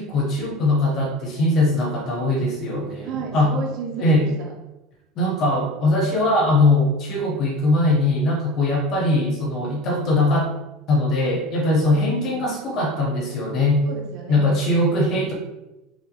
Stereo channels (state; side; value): normal; both; correlation 0.35